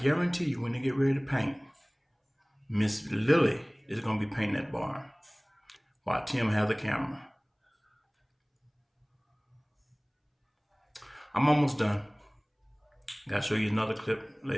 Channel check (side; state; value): both; identical; correlation 1.00